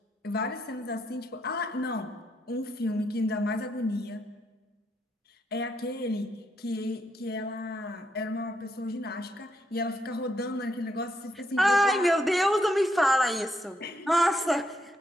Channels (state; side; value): normal; both; correlation 0.77